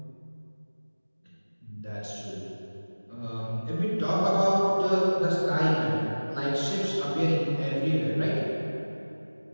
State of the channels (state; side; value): inverted; both; correlation -1.00